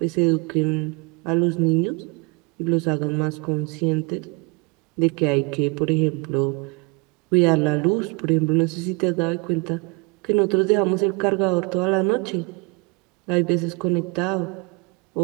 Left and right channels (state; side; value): quieter; left; 29.4 dB